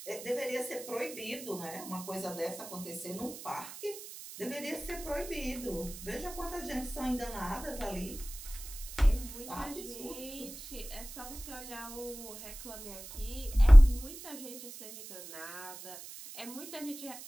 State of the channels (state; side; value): noise; right; hiss, 13 dB below the sound